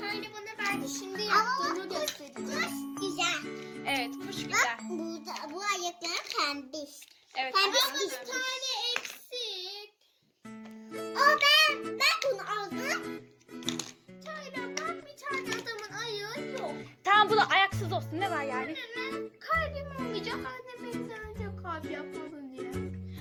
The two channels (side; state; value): both; identical; correlation 1.00